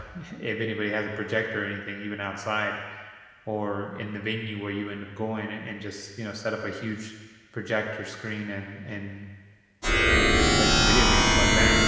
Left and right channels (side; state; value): both; identical; correlation 1.00